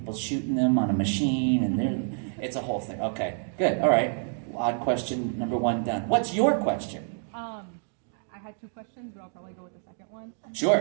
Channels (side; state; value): left; silent; 55 dB below the other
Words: shooting them on a machine, and it's a whole thing. Okay, good. All right. Odd question number 1 done. What's your question? I had 2 questions, but I'll probably go with the second one.